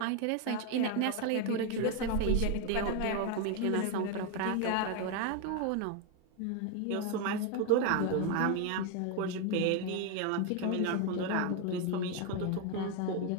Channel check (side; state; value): both; different; correlation 0.01